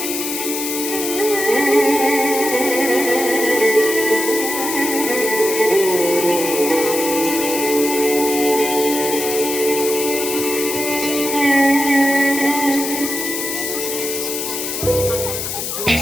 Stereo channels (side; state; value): left; noise; hiss, 4 dB below the sound